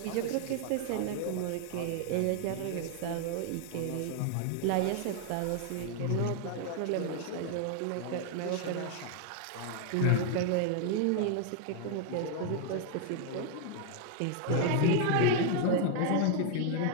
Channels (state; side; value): different; both; correlation 0.00